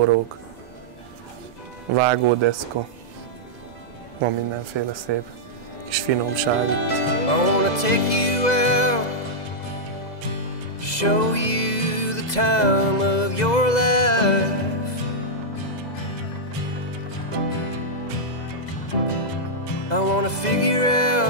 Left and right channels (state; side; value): late; right; 2.0 ms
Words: vágódeszka, van mindenféle szép kis finomság itt. I wanna take you out, show you the time of your life. I wanna figure